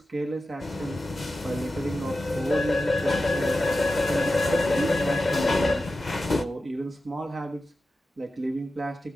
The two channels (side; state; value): both; normal; correlation 0.92